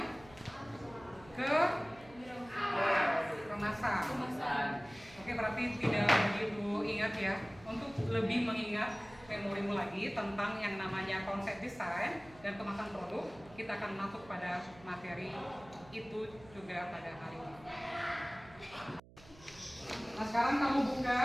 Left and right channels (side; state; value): right; noise; hum, 22 dB below the sound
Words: kemasan. Oke, berarti tidak begitu ingat ya. Untuk lebih mengingat memorimu lagi tentang yang namanya konsep desain dan kemasan produk, kita akan masuk pada materi itu juga pada hari ini. Nah, sekarang kamu buka